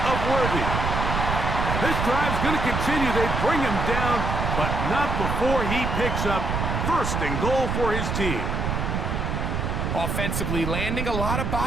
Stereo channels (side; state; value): right; noise; rumble, 1 dB below the sound